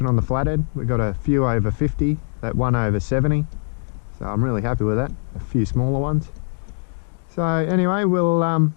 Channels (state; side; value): silent; right; digital silence